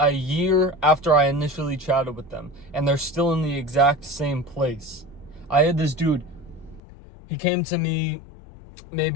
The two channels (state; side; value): drops out; right; at 6.8 s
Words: year after I initially chatted with them, and they're still in the exact same place. I had this dude, he came to me